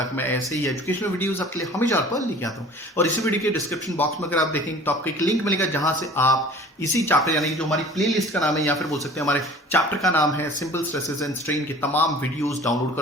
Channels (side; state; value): both; normal; correlation 0.46